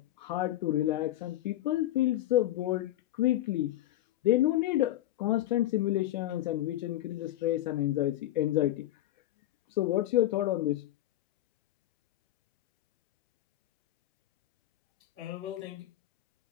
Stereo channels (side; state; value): right; quieter; 14.2 dB